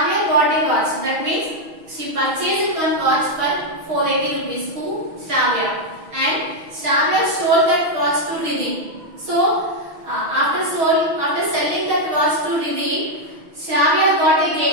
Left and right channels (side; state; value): left; late; 6.3 ms